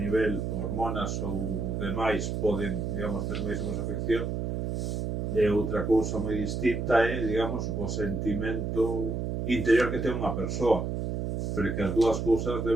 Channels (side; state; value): right; noise; hum, 2 dB below the sound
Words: hormonas ou demais poden, digamos, ter máis ou menos afección, e outra cousa moi distinta é, digamos, o sentimento interior que ten unha persoa, pero que as dúas cousas